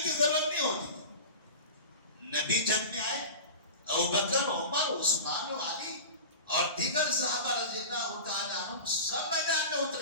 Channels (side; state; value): both; inverted; correlation -0.31